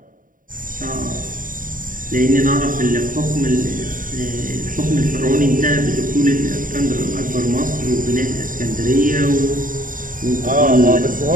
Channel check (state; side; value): late; left; 0.39 ms